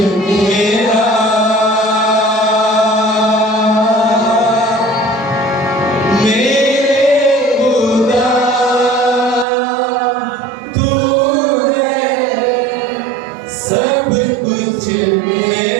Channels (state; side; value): drops out; left; at 9.5 s